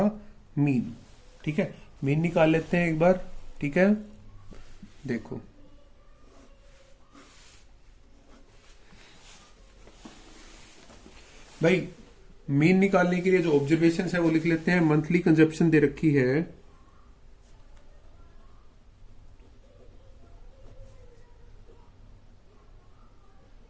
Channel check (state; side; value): identical; both; correlation 1.00